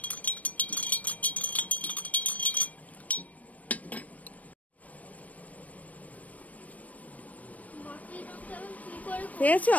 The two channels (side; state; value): right; late; 0.070 ms